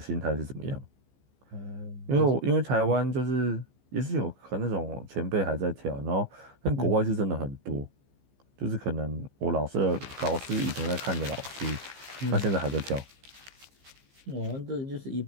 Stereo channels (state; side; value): late; left; 15 ms